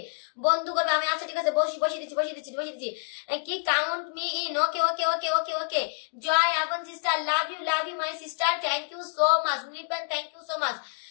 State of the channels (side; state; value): right; silent; 60 dB below the other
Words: বন্ধু করবে আমি। আচ্ছা ঠিক আছে, বসিয়ে দিচ্ছি। কি count me in, okay. Joy আবন sister, love you my sister, thank you so much. Nirupan, thank you so much.